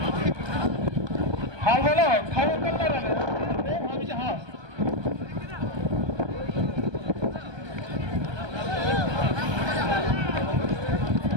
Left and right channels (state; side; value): late; left; 1.2 ms